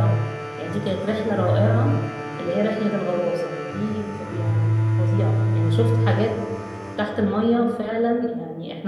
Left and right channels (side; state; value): both; identical; correlation 1.00